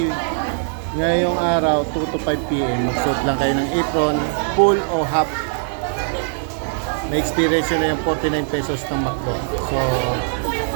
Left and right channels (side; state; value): left; silent; digital silence